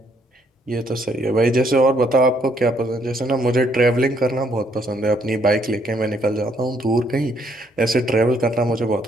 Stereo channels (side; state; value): both; normal; correlation 0.69